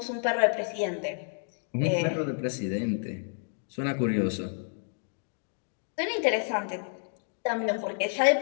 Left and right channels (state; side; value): silent; right; digital silence